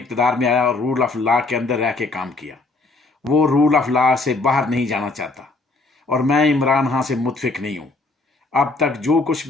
में आया और रूल ऑफ लॉ के अंदर रह के काम किया। वो रूल ऑफ लॉ से बाहर नहीं जाना चाहता और मैं इमरान खां से मुतफिक नहीं हूँ। अब तक जो कुछ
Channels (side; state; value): right; quieter; 3.4 dB